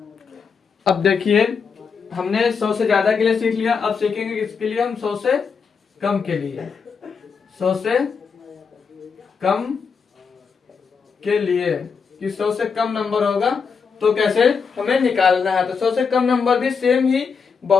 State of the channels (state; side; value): quieter; right; 5.8 dB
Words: अब देखिए हमने 100 से ज्यादा के लिए सीख लिया, अब सीखेंगे किसके लिए हम 100 से कम के लिए। 100 से कम के लिए कि 100 से कम नंबर होगा तो कैसे हमें निकालना है। तो 100 से कम नंबर भी सेम ही